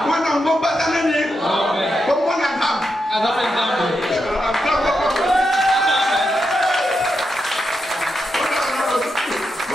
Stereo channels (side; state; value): both; normal; correlation 0.85